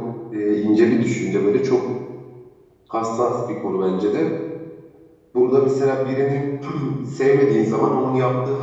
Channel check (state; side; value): identical; both; correlation 1.00